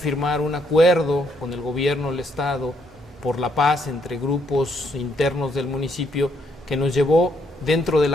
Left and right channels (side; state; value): both; normal; correlation 0.73